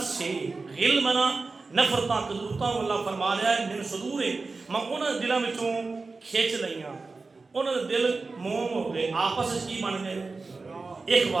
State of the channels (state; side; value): quieter; left; 3.9 dB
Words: سے غل منا نفرتاں کدورتاں اللہ فرما رہا ہے من صدور میں انہوں نے دلوں وچوں کھچ لیاں انہوں نے دل موم ہو گئے آپس کی بن گئے